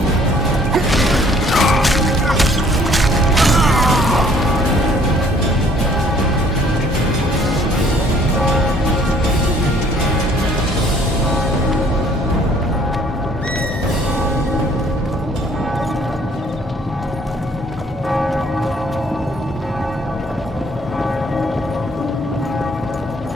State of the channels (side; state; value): both; normal; correlation 0.59